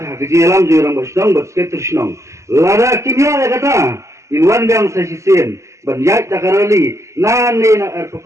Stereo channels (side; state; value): left; late; 0.14 ms